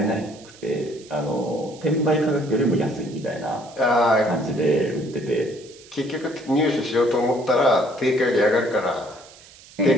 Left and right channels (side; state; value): right; noise; hiss, 22 dB below the sound